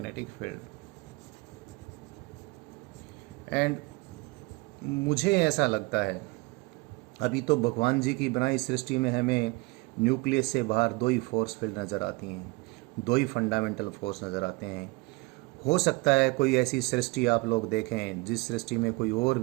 field. And मुझे ऐसा लगता है अभी तो भगवान जी की बनाई सृष्टि में हमें न्यूक्लियस से बाहर दो ही फोर्स फील्ड नज़र आती हैं, दो ही फंडामेंटल फोर्स नज़र आते हैं। हो सकता है कोई ऐसी सृष्टि आप लोग देखें जिस सृष्टि में कोई और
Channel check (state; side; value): quieter; left; 24.9 dB